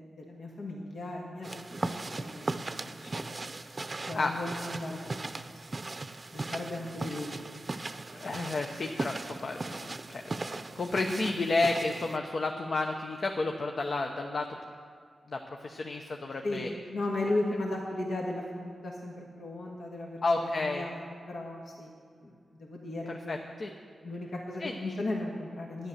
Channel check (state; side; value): normal; both; correlation 0.92